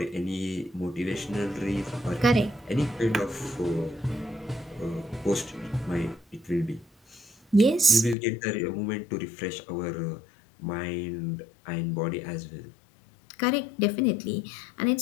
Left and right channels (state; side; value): drops out; right; at 8.2 s